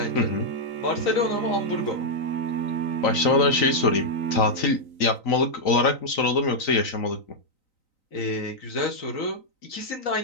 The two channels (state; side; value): late; right; 3.9 ms